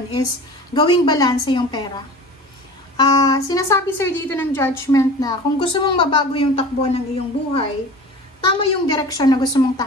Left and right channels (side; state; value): both; normal; correlation 0.38